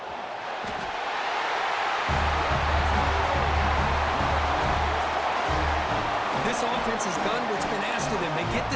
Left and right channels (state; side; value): identical; both; correlation 1.00